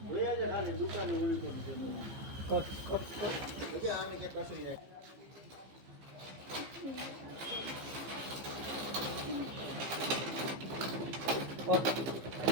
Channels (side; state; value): left; late; 15 ms